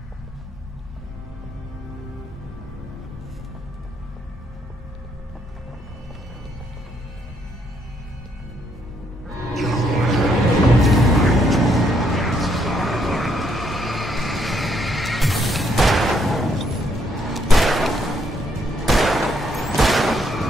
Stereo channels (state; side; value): normal; both; correlation 0.73